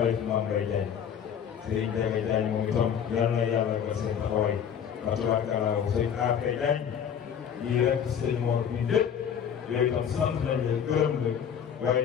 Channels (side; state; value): right; quieter; 8.1 dB